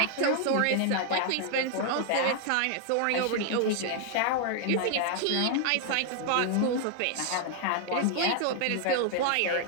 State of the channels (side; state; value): both; different; correlation 0.00